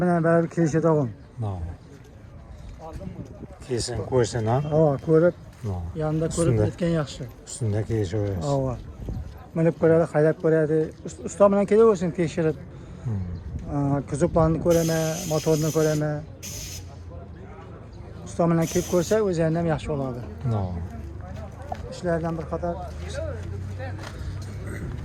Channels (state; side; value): identical; both; correlation 1.00